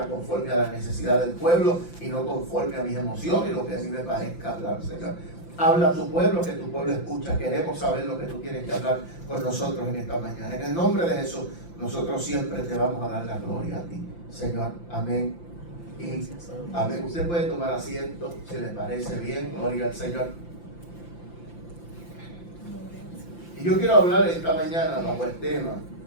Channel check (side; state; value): right; late; 5.9 ms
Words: conforme a la necesidad del pueblo y no conforme a mis emociones y lo que a mí me parezca hablar, Señor. Habla a tu pueblo, que tu pueblo escucha. Queremos saber lo que tú tienes que hablar con nosotros en esta mañana. En el nombre de Jesús, nosotros siempre te vamos a dar la gloria a ti, Señor. Amén. Y amén. Usted puede tomar asiento si le parece bien. Gloria al Señor. Y yo quiero hablar esta mañana bajo el tema